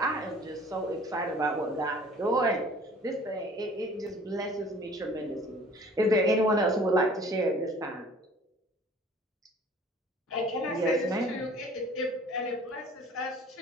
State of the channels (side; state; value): both; normal; correlation 0.50